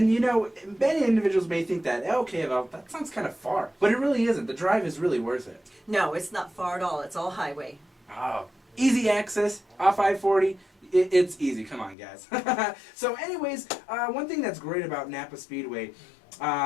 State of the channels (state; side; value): drops out; right; at 12.0 s